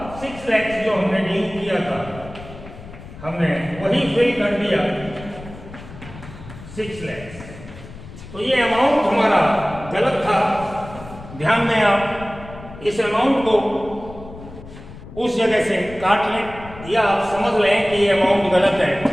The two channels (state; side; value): noise; left; rumble, 15 dB below the sound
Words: 6 लाख जो हमने ड्यू किया था, हमने वही फिल कर दिया 6 लाख। तो ये अमाउंट हमारा गलत था। ध्यान दें, आप इस अमाउंट को उस जगह से काट लें या आप समझ लें कि ये अमाउंट गलत है।